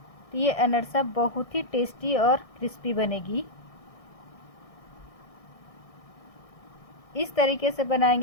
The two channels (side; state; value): right; late; 1.6 ms